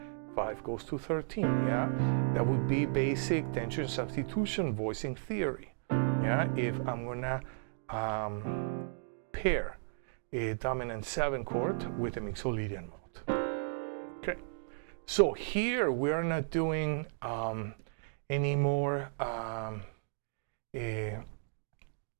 5 goes to 13. Yeah, that would be basic tension substitution voicing theory. Yeah, if I'm gonna pair a dominant 7 chord with a Mixolydian mode. Okay, so here we are not doing any more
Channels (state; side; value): silent; left; digital silence